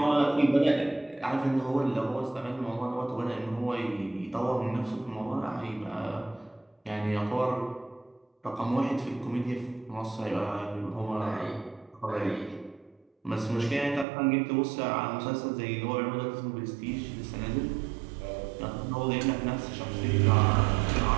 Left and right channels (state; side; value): drops out; left; at 14.1 s